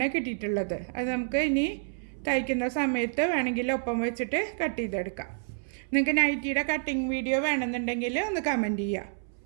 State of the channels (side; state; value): left; silent; 59 dB below the other